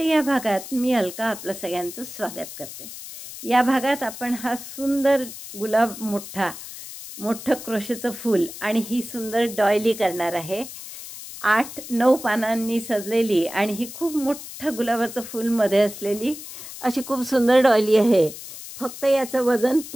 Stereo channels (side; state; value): left; noise; hiss, 12 dB below the sound